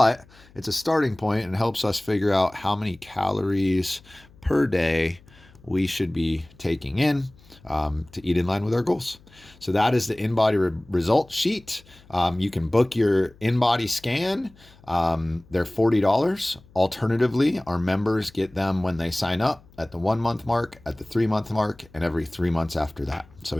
it's a starting point and helps us figure out how many calories per day we should be taking in to eat in line with our goals. So that is the InBody result sheet. You can book your InBody scan. They're $40. Alternatively, our members get them when they sign up at the 1 month mark, at the 3 month mark, and every 3 months after that. So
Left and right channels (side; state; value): left; noise; hum, 27 dB below the sound